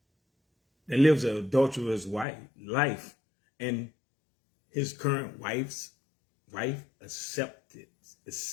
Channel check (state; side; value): drops out; right; at 2.2 s